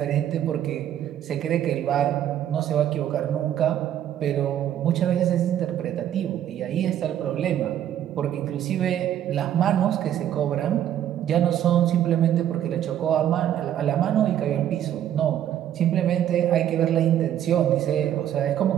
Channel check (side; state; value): left; quieter; 10.9 dB